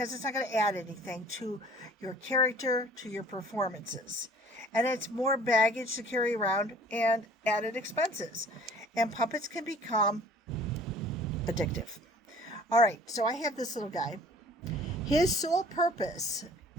it's not going to add anything to your character, to your performances. And it's more baggage to carry around and added expenses. And puppets can become addictive. All right, so I have this little guy. His sole purpose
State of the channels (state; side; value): normal; both; correlation 0.50